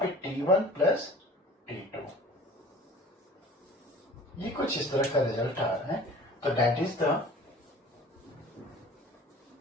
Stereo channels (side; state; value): both; normal; correlation 0.45